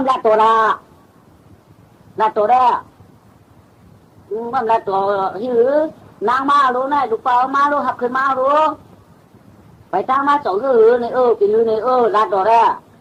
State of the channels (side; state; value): both; identical; correlation 1.00